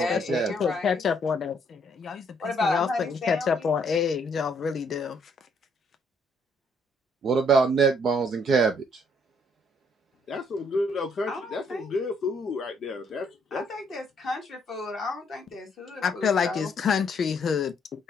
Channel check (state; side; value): normal; both; correlation 0.68